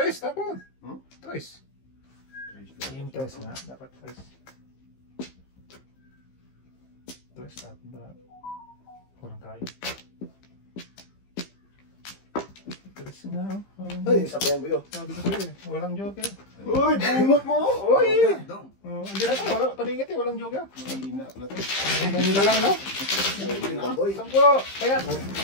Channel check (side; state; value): right; late; 15 ms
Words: tapon. Trace. Yung trace nga, dapat trace. Trace, tapon ba? Walang kayo. Trace nga, oh. Ay, sabihan mo yun. Sabi ko sa'yo eh, walang joke eh. Uy! Bunot mo! Uy! Dong! Hindi na to, wala, paningit eh, walang joke eh. Hina pala to. May nila lang, no? Boy. Sampo, kaya.